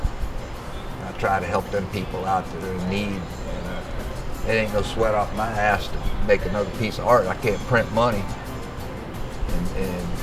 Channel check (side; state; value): both; identical; correlation 1.00